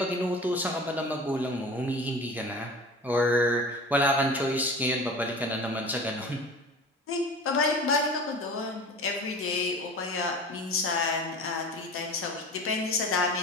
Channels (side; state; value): both; normal; correlation 0.37